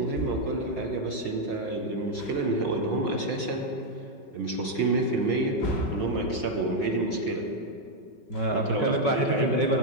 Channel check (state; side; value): late; right; 5.3 ms